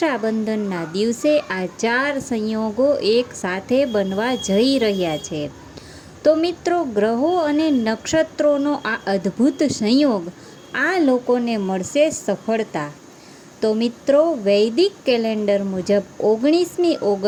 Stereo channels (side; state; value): both; identical; correlation 1.00